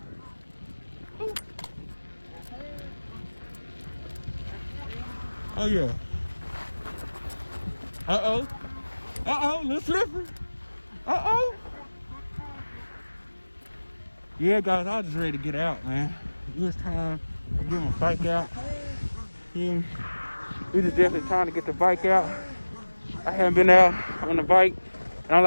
Ooh. Oh, yeah. Uh-oh. Uh-oh, little slippery. Uh-oh. Yeah, guys, I was just ready to get out, man. It was time to get my bike out. Yeah. It was definitely time to get the bike out. I haven't been out on the bike, and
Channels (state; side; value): inverted; both; correlation -1.00